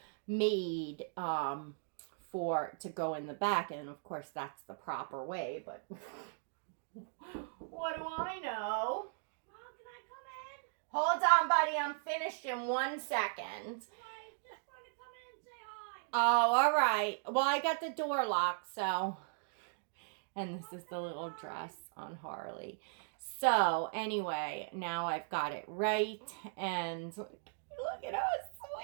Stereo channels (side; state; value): left; silent; digital silence